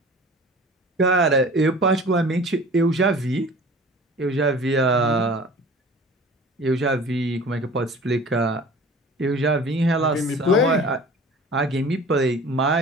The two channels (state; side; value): normal; both; correlation 0.43